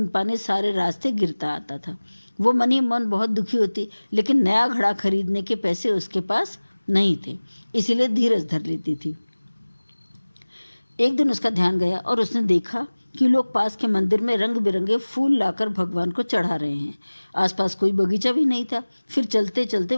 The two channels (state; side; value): inverted; both; correlation -1.00